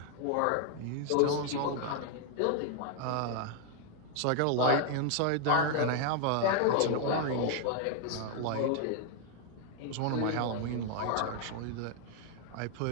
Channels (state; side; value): different; both; correlation 0.00